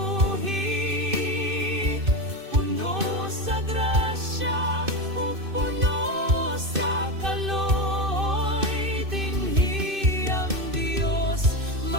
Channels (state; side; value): late; left; 2.6 ms